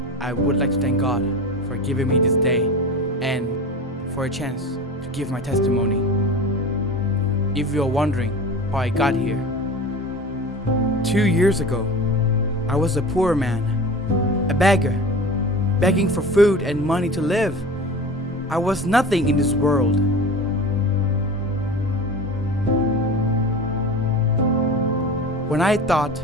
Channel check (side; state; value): both; normal; correlation 0.33